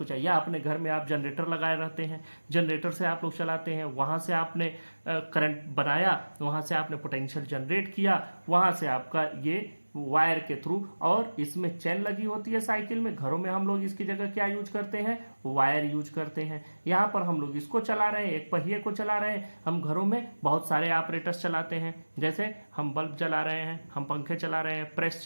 चाहिए। या अपने घर में आप जनरेटर लगाए रहते हैं, जनरेटर से आप लोग चलाते हैं, वहाँ से आपने करंट बनाया, वहाँ से आपने पोटेंशियल जनरेट किया, वहाँ से आपका ये वायर के थ्रू, और इसमें चेन लगी होती है साइकिल में। घरों में हम लोग इसकी जगह क्या यूज करते हैं, वायर यूज करते हैं। यहाँ पर हम लोग इसको चला रहे हैं, एक पहिए को चला रहे हैं। हम घरों में बहुत सारे ऑपरेटर्स चलाते हैं, जैसे हम बल्ब चला रहे हैं, हम पंखे चला रहे हैं, प्रेस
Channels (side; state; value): both; inverted; correlation -1.00